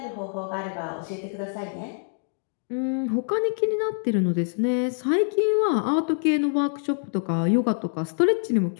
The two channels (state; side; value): silent; right; 61 dB below the other